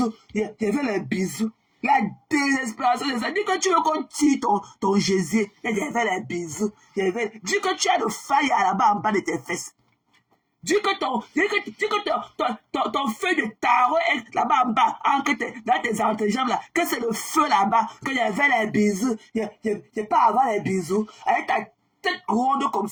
Il y avait les bisous. La désespération de ça. Dis que tu veux qu'on tire ton gésier. Il y avait les bisous. Dis que tu as le faille là-bas en bas de tes fesses. Dis que ton feu de tarot est là-bas en bas, dans tes entrejambes là, que c'est le feu là-bas, qu'il y avait les bisous. Il n'y a pas avoir les bisous. Avec ta tête ronde comme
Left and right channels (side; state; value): both; identical; correlation 1.00